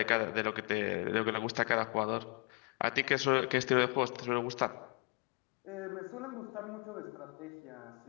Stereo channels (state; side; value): quieter; right; 33.2 dB